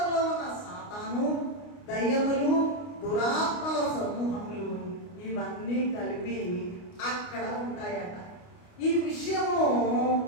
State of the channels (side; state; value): right; late; 29 ms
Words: ఉన్న సాతాను, దయ్యములు, దురాత్మల సమూహములు ఇవన్నీ కలిపి అక్కడ ఉంటాయట. ఈ విషయము